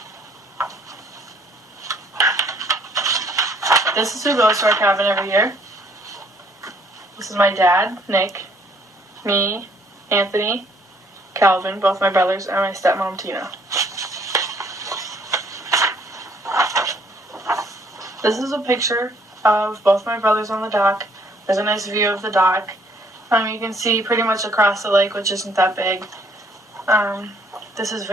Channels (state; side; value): normal; both; correlation 0.63